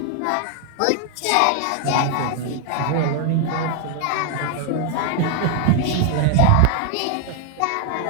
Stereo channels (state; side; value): different; both; correlation 0.00